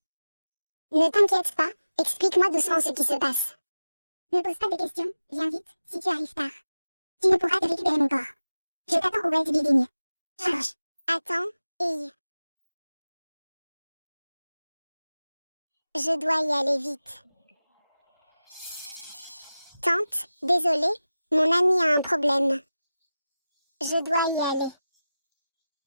Ne t'inquiète pas, explique-moi doucement ce qui se passe. Ne pose pas de questions, viens vite, si tu arrives tard. Tu ne pourras te récupérer mon corps. Je t'attends au Wells Building. Charge. Attends, et... Je dois y aller vite. Tante, désolée, mon ami a un problème. Je dois y aller.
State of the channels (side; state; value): both; inverted; correlation -0.95